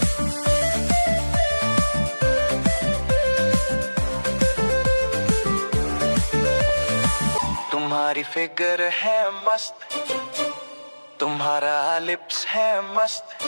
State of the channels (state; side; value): inverted; both; correlation -1.00